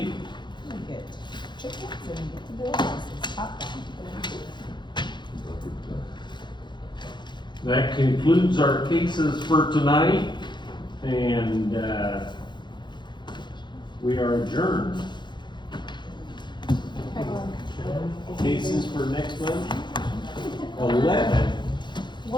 We get chickens and get the bills. It's hot down. that concludes our cases for tonight, and we are adjourned. Cases for next month? 11.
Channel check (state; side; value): late; right; 0.22 ms